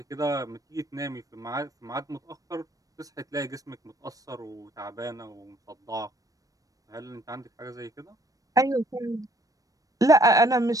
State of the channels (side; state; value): left; late; 0.17 ms